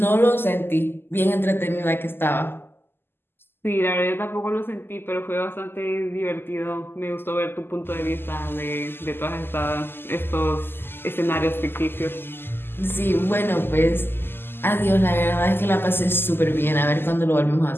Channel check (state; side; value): late; right; 0.11 ms